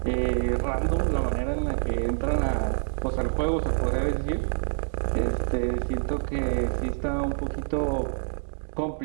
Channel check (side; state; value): left; silent; digital silence